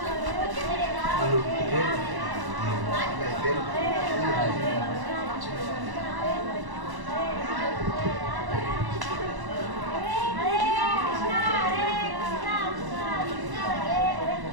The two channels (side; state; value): left; late; 1.1 ms